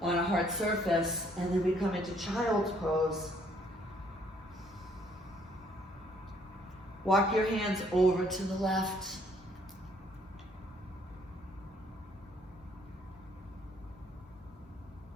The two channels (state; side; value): normal; both; correlation 0.65